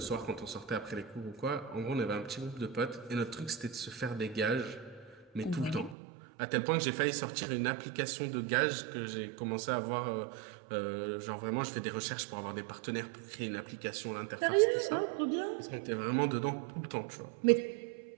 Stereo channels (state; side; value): drops out; left; at 6.0 s